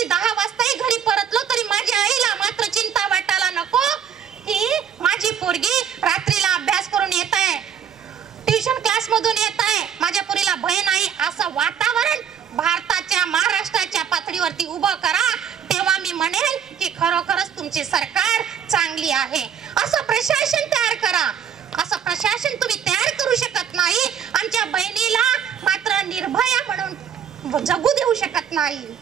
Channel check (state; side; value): quieter; left; 8.2 dB